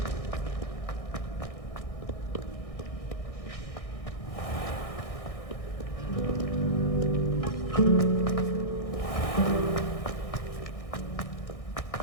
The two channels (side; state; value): right; late; 1.6 ms